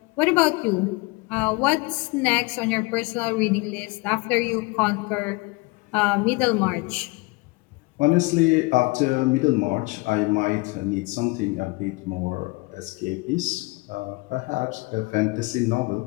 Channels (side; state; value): right; quieter; 25.7 dB